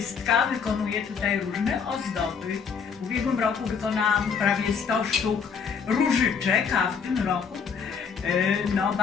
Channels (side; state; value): right; quieter; 6.2 dB